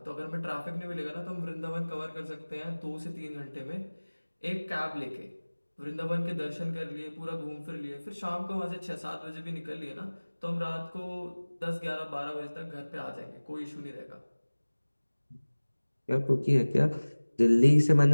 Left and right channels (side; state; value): both; inverted; correlation -1.00